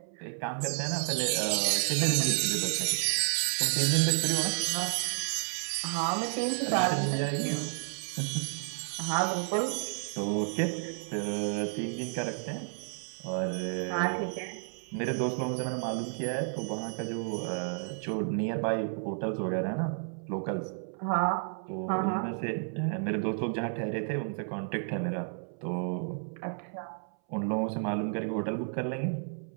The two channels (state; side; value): silent; left; 57 dB below the other